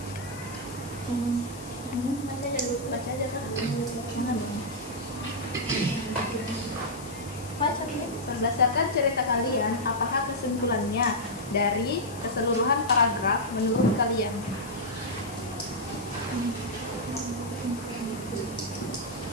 baca aja kan? Baca nih. Berdasarkan cerita kalian, apakah kesimpulannya dari keseluruhan paragraf menurut kalian?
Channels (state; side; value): noise; left; hiss, 16 dB below the sound